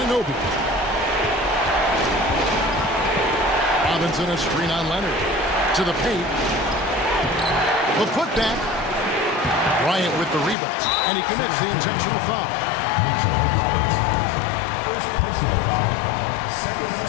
Robinson a screen on Leonard. To the paint. The putback. Bryant with the rebound. And he commits the intentional foul. Mitchell Robinson. First personal foul. Second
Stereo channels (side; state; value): right; drops out; at 10.6 s